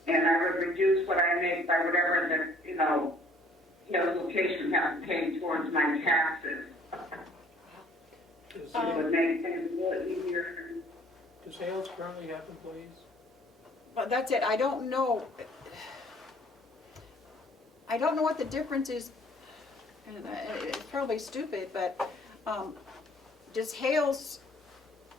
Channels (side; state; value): both; normal; correlation 0.57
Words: I would reduce what I make by whatever the, Carroll's location has to pay towards my taxes. It would make things a little easier. Does Hales currently have employees? But that's it. I don't know. I don't know what the difference is. And it's probably stupid, but does Hales